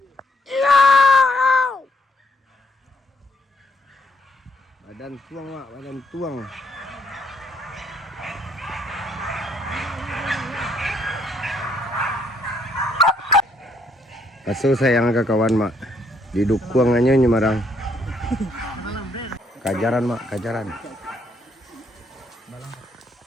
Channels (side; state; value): both; normal; correlation 0.70